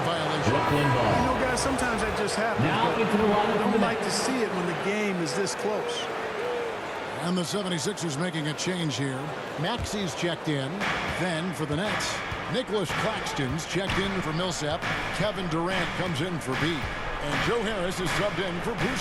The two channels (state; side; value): identical; both; correlation 1.00